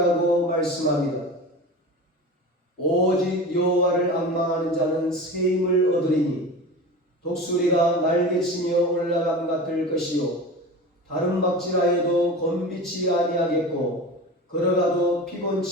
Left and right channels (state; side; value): normal; both; correlation 0.31